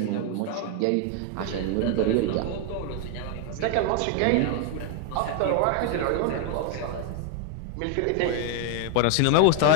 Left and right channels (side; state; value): both; different; correlation 0.01